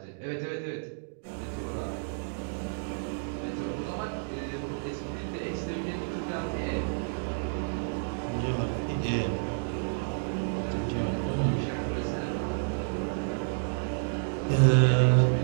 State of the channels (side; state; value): left; silent; digital silence